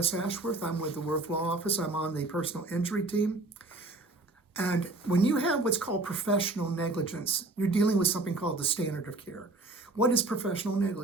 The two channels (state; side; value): quieter; left; 3.1 dB